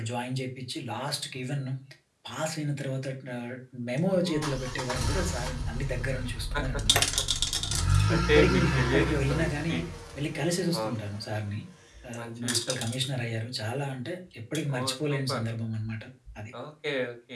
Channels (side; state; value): both; identical; correlation 1.00